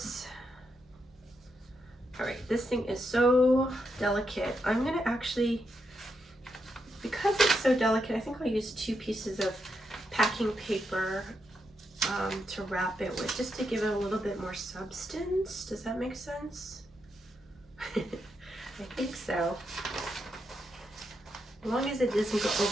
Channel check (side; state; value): both; normal; correlation 0.83